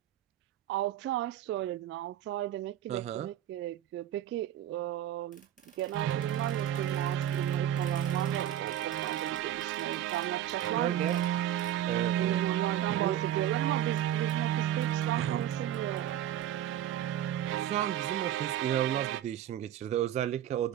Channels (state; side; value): quieter; left; 11.5 dB